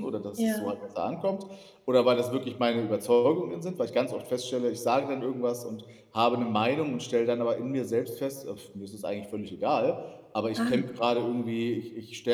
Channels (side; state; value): both; identical; correlation 1.00